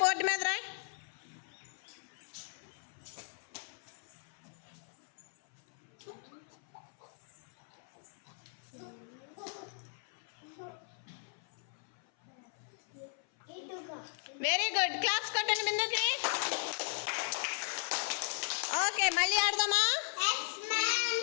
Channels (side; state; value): right; silent; 53 dB below the other